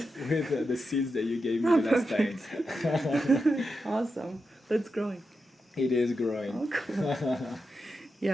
With the seeds that you gave me the last time. Awesome. That's growing. It is growing. Oh, cool.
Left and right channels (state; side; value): normal; both; correlation 0.88